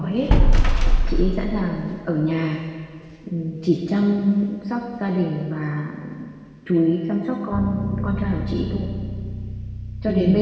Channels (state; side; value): identical; both; correlation 1.00